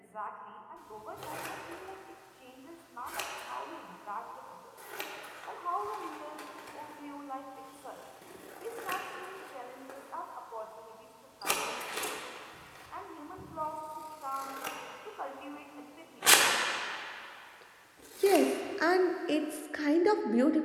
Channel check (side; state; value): both; identical; correlation 1.00